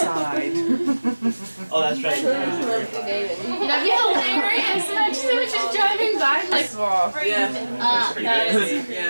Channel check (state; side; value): inverted; both; correlation -1.00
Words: Oh, that's right. That'd be hilarious. Imagine they were just driving by like. Yeah.